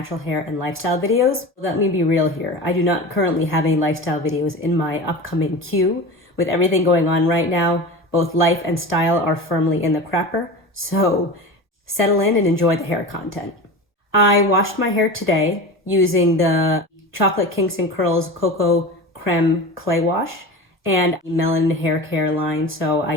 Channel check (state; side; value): normal; both; correlation 0.30